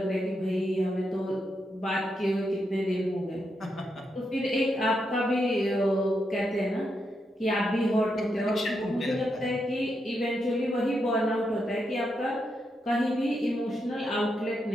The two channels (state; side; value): normal; both; correlation 0.83